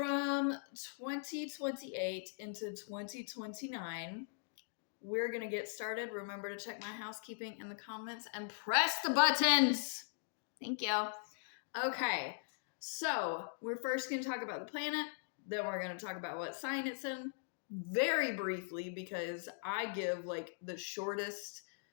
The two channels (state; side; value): silent; right; digital silence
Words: 2028 into 2029. We're going to get started. Remember to check my housekeeping in the comments and press the buttons. Thank you. Okay. So, we're first going to talk about the planet, then we're going to talk about what sign it's in, very briefly, because I give like the shortest